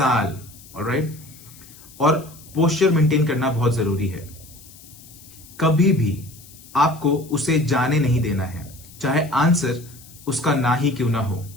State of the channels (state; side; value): noise; left; hiss, 21 dB below the sound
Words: ऑलराइट, और पोस्चर मेंटेन करना बहुत जरूरी है। कभी भी आपको उसे जाने नहीं देना है, चाहे आंसर उसका ना ही क्यों ना हो,